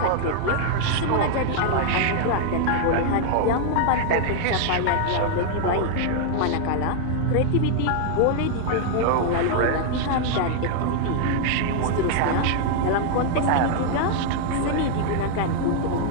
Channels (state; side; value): different; both; correlation 0.00